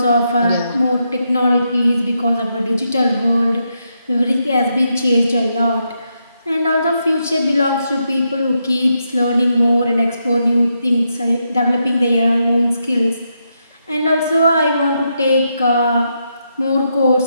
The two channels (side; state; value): both; inverted; correlation -0.82